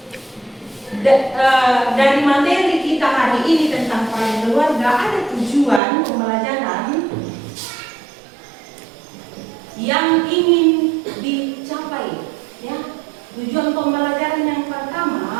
dari materi kita hari ini tentang peran keluarga ada tujuan pembelajaran yang ingin dicapai ya. Tujuan pembelajaran yang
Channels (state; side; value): drops out; left; at 5.8 s